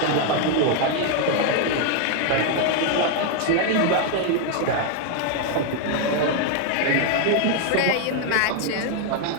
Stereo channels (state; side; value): different; both; correlation 0.00